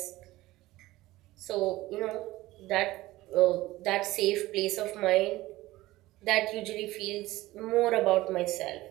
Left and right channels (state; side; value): quieter; left; 17.8 dB